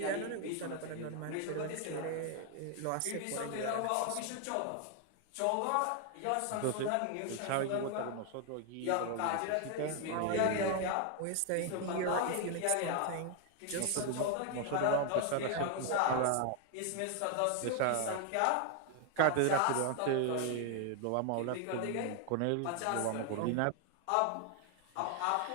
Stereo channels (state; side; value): different; both; correlation 0.00